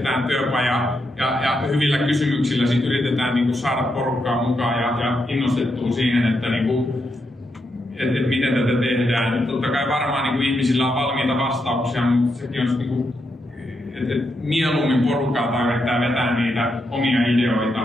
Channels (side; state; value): both; normal; correlation 0.82